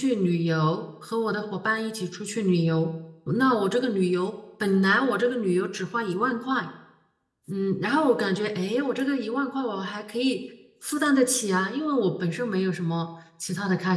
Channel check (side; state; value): both; identical; correlation 1.00